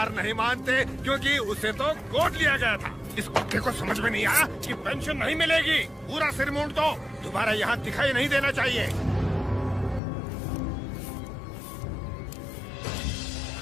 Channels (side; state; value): right; drops out; at 10.0 s